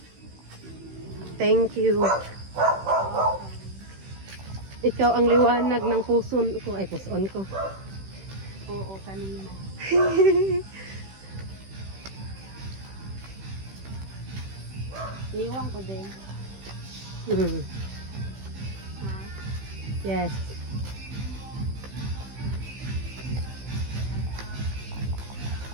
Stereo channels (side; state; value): left; late; 15 ms